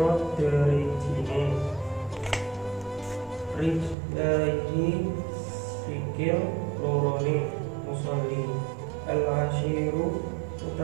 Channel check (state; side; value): drops out; left; at 4.0 s